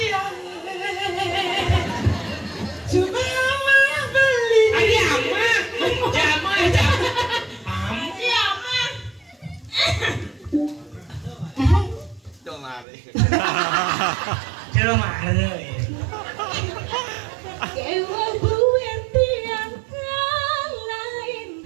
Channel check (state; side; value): drops out; left; at 12.9 s